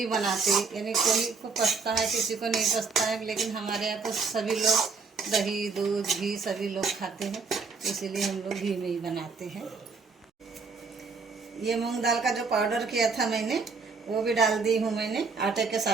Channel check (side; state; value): left; quieter; 4.7 dB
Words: बनाते, यानी कोई को पसता है किसी को नहीं पसता है, लेकिन हमारे यहाँ तो सभी लोग दही दूध घी सभी लोग खाते हैं, इसीलिए हम लोग घी में ही बनाते हैं। ये मूंग दाल का जो पाउडर किया था मैंने, वो भी डाल दी हूँ मैंने आटे के